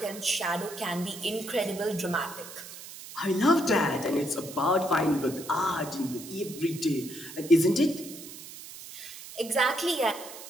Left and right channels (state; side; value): noise; right; hiss, 14 dB below the sound